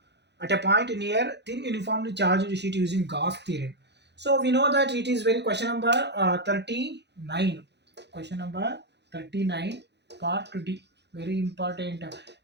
at a point near thin uniformly charged sheet using Gauss theorem. So we know that it is very question number 39. Question number 39, part 2D. Very important.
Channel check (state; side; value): late; left; 0.50 ms